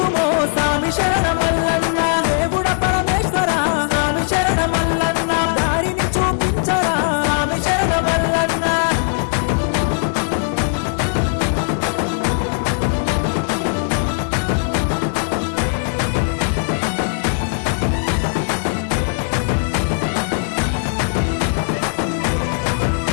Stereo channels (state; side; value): silent; right; 64 dB below the other